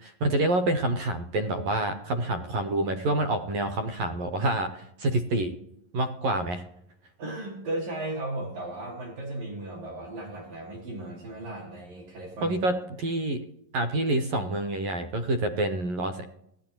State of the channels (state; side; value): late; left; 11 ms